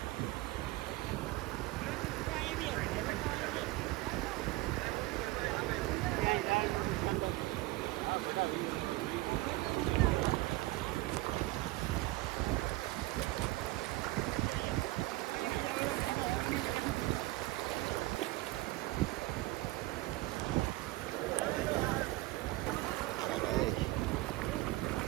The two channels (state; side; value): quieter; left; 19.2 dB